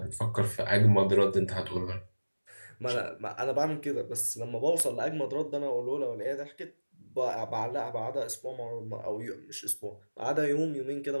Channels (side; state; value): both; inverted; correlation -1.00